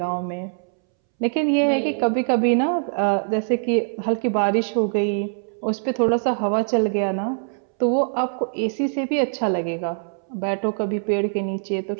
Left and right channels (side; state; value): left; silent; 64 dB below the other